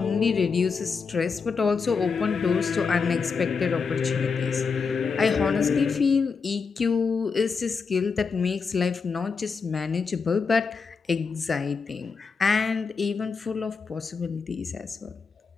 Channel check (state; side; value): quieter; right; 5.2 dB